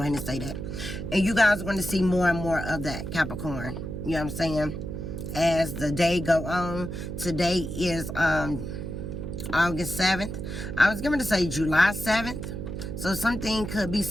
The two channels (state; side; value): noise; right; hum, 6 dB below the sound